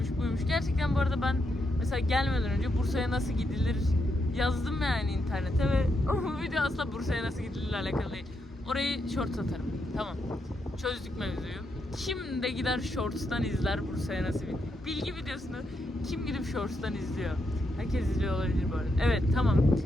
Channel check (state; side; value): normal; both; correlation 0.81